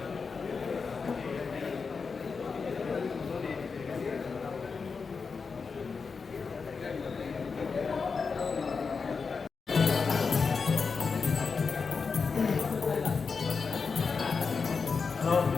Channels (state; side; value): quieter; right; 5.1 dB